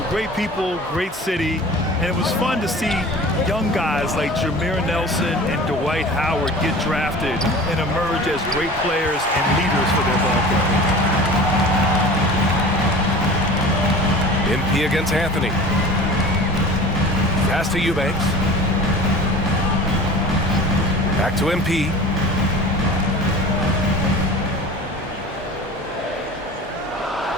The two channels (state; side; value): normal; both; correlation 0.39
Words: great people, great city, and it was fun to see young guys like Jameer Nelson and Dwight Howard get drafted and emerge as great players and leaders for their ball club. MP against Anthony. Pass to Eubanks. Back to MP.